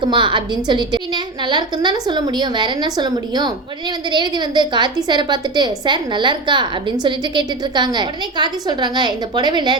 அப்படின்னு சொல்லிட்டு. பின்ன நல்லா இருக்குன்னு தானே சொல்ல முடியும், வேற என்ன சொல்ல முடியும். உடனே வந்து ரேவதி வந்து கார்த்தி சாரை பார்த்துட்டு, சார் நல்லா இருக்கா அப்படின்னு சொல்லிட்டு கேட்டுட்டு இருக்காங்க. உடனே கார்த்தி சொல்றாங்க, இந்த புடவையில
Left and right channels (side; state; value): left; quieter; 3.2 dB